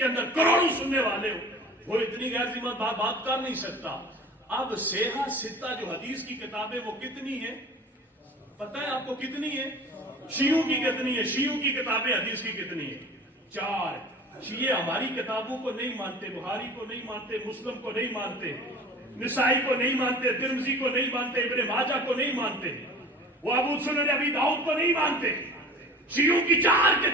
اندر کروڑوں سننے والے ہو، وہ اتنی غیر ذمہ بات کر نہیں سکتا۔ اب سیحہ ستہ جو حدیث کی کتابیں وہ کتنی ہیں پتہ ہے آپ کو کتنی ہے؟ شیعوں کی کتنی ہے؟ شیعوں کی کتابیں حدیث کی کتنی ہے؟ 4۔ شیعہ ہماری کتابوں کو نہیں مانتے، بخاری کو نہیں مانتے، مسلم کو نہیں مانتے، نسائی کو نہیں مانتے، ترمذی کو نہیں مانتے، ابن ماجہ کو نہیں مانتے، وہ ابو سنن ابی داؤد کو نہیں مانتے۔ شیعوں کی 4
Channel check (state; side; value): normal; both; correlation 0.41